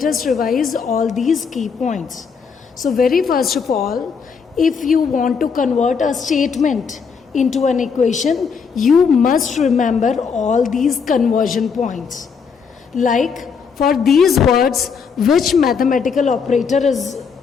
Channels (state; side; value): quieter; right; 5.9 dB